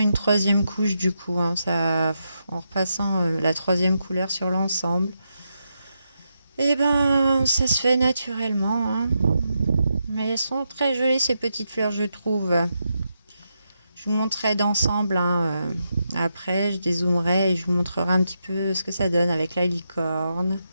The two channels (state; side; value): inverted; both; correlation -0.84